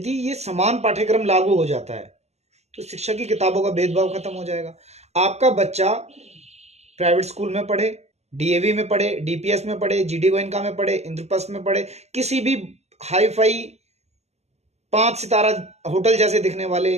ये समान पाठ्यक्रम लागू हो जाता है तो शिक्षा की किताबों का भेदभाव खत्म हो जाएगा। आपका बच्चा प्राइवेट स्कूल में पढ़े, डीएवी में पढ़े, डीपीएस में पढ़े, जीडी गोयनका में पढ़े, इंद्रप्रस्थ में पढ़े, किसी भी हाई फाई 5 सितारा होटल जैसे दिखने वाले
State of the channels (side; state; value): left; late; 0.32 ms